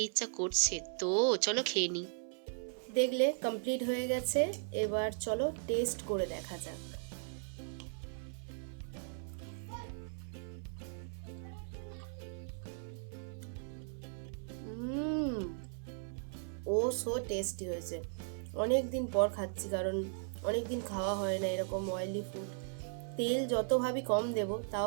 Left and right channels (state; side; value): silent; left; 53 dB below the other